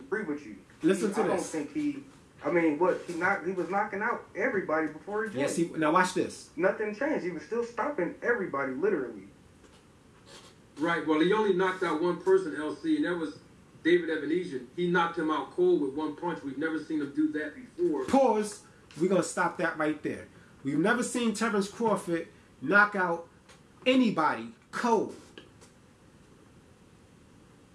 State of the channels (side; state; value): both; identical; correlation 1.00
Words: with you. Listen to this. I don't think he... I mean, he was knocking out everybody before he joined. Yes, now watch this. Nothing changed. He was still stopping everybody, literally. Right, well, he only knocked out one person, LC, and that was David Evanesian. He knocked him out cold with one punch. We've never seen him do that before. Pause. We're going to stop that right there. We've never seen Terence Crawford knock out anybody cold.